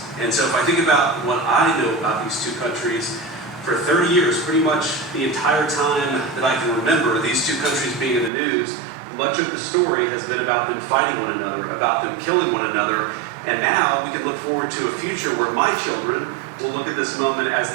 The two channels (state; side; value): drops out; left; at 8.3 s